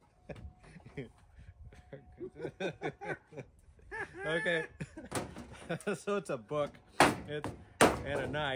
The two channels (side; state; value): both; identical; correlation 1.00